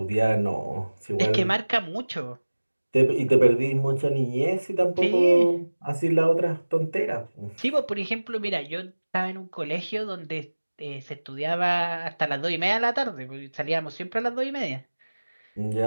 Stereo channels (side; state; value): both; inverted; correlation -1.00